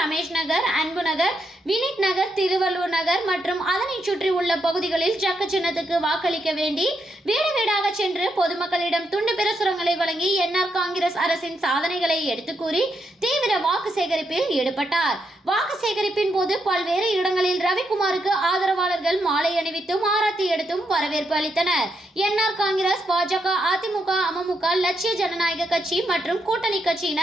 நகர், அன்பு நகர், வினித் நகர், திருவள்ளூர் நகர் மற்றும் அதனை சுற்றி உள்ள பகுதிகளில் ஜக்கு சின்னத்துக்கு வாக்களிக்க வேண்டி வீடு வீடாக சென்று பொதுமக்களிடம் துண்டு பிரசுரங்களை வழங்கி என்ஆர் காங்கிரஸ் அரசின் சாதனைகளை எடுத்து கூறி தீவிர வாக்கு சேகரிப்பில் ஈடுபட்டார். வாக்கு சேகரிப்பின் போது பல்வேறு இடங்களில் ரவிக்குமாருக்கு ஆதரவாளர்கள் மாலை அணிவித்தும் ஆரத்தி எடுத்தும் வரவேற்பு அளித்தனர். என்ஆர் காங்கிரஸ், பாஜக, அதிமுக, அமமுக, லட்சிய ஜனநாயக கட்சி மற்றும் கூட்டணி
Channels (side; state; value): both; normal; correlation 0.80